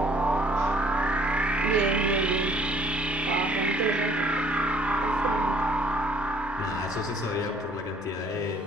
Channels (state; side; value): normal; both; correlation 0.59